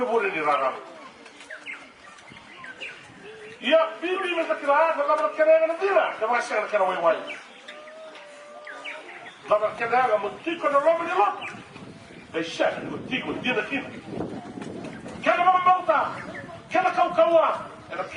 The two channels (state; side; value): identical; both; correlation 1.00